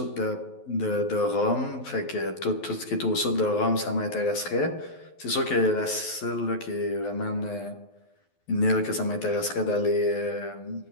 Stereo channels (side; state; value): right; late; 12 ms